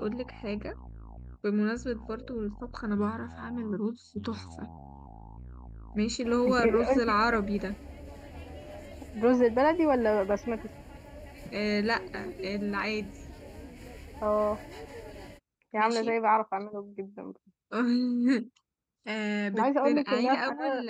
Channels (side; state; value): both; identical; correlation 1.00